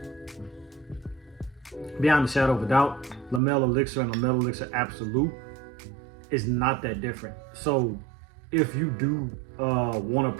beyond a shadow of a doubt, La Mer Elixir and La Mer Elixir Absolu is not that different. So if you do want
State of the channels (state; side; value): drops out; left; at 3.4 s